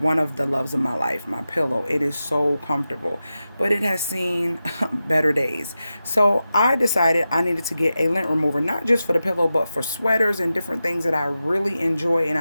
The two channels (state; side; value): inverted; both; correlation -0.92